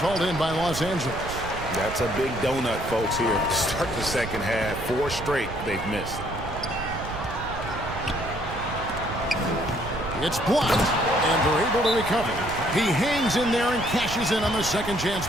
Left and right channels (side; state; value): right; noise; rumble, 10 dB below the sound